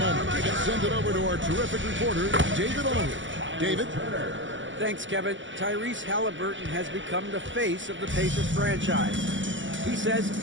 let's send it over to our terrific reporter, David Aldridge. David? Thanks, Kevin. Tyrese Halliburton has become the face of the Pacers franchise. He says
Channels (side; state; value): left; late; 0.55 ms